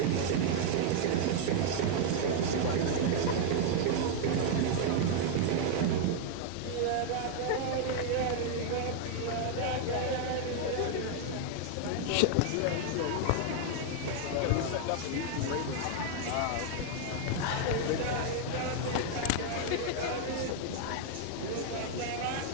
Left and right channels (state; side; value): different; both; correlation 0.00